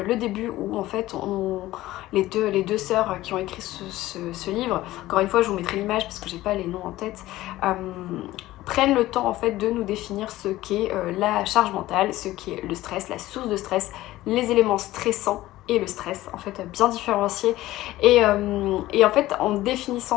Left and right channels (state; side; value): quieter; right; 16.3 dB